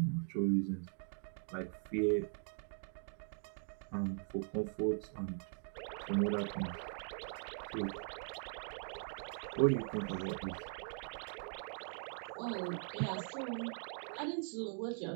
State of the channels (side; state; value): left; silent; 50 dB below the other